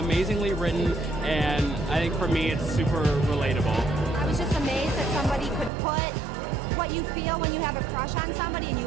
written, and I think for me it's super relatable. I was just amazed that somebody could put what you feel when you have a crush on somebody and you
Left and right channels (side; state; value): left; drops out; at 5.7 s